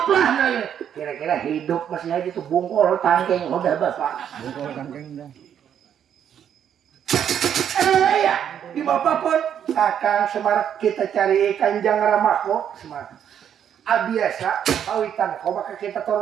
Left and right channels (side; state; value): left; quieter; 9.1 dB